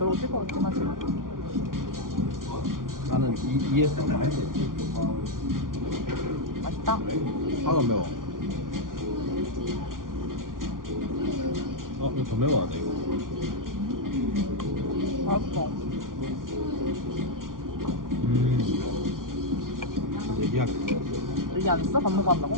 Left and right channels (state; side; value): late; left; 0.90 ms